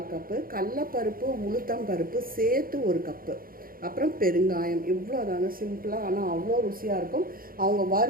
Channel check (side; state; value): left; late; 0.42 ms